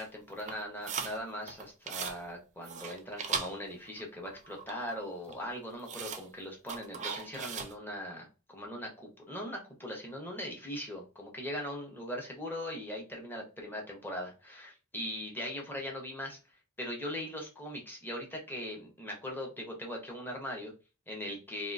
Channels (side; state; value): both; normal; correlation 0.17